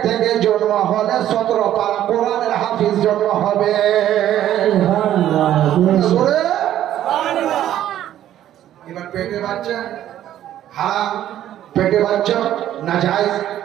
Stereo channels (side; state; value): left; quieter; 12.0 dB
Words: থেকে জন্ম হলে 17 পারা কোরআনের হাফিজ জন্ম হবে। এবার পেটে বাচ্চা হারাম, পেটে বাচ্চা নাজায়েজ,